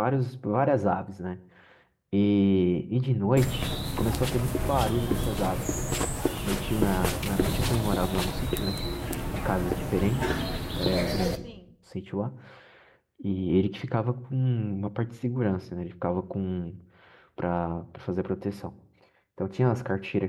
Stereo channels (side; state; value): both; identical; correlation 1.00